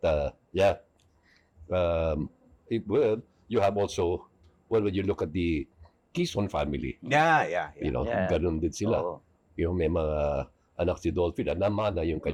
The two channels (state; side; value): identical; both; correlation 1.00